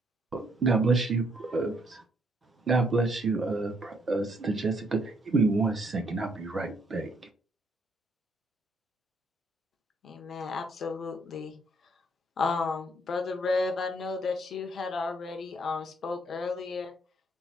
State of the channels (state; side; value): normal; both; correlation 0.69